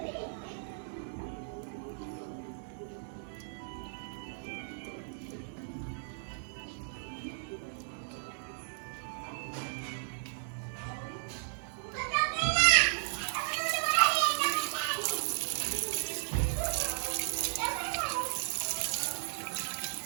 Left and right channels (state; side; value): silent; left; 54 dB below the other